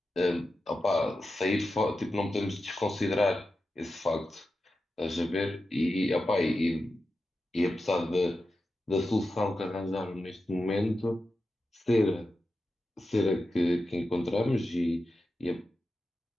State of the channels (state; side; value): normal; both; correlation 0.91